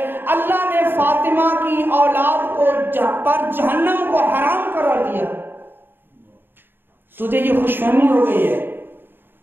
اللہ نے فاطمہ کی اولاد کو پر جہنم کو حرام قرار دیا. تجھے یہ خوش فہمی ہو گئی ہے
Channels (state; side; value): late; left; 0.098 ms